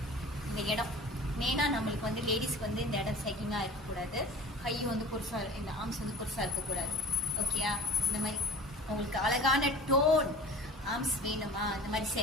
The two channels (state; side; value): normal; both; correlation 0.41